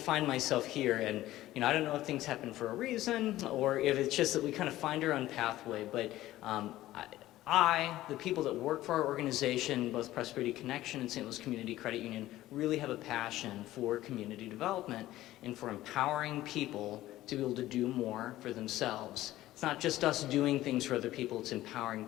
myself here, and I don't know if things happen for a reason or if it's just that we kind of find our own pathway, but the people that work for our organization, both Prosperity Connection and St. Louis Community Credit Union, really have a passion for community development and for empowering people to be able to do more for themselves. It's not just us doing things for other people, it's empowering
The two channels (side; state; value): right; quieter; 15.4 dB